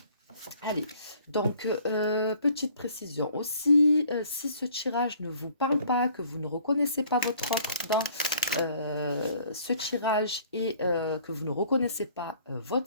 Allez, donc petite précision aussi, si ce tirage ne vous parle pas, que vous ne reconnaissez pas votre offre dans ce tirage et que vous ne reconnaissez pas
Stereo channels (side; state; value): both; inverted; correlation -0.57